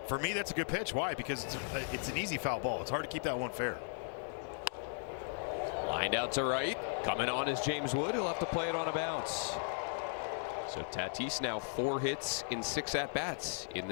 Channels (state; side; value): silent; right; 53 dB below the other